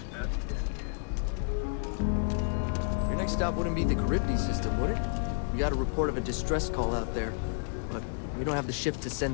Your next stop wouldn't be the Charybdis system, would it? We got a report of a distress call out there, but we don't have the shift to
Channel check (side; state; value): right; silent; digital silence